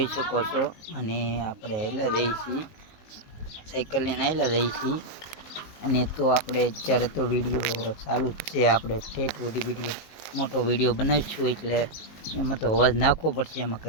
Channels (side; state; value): right; late; 19 ms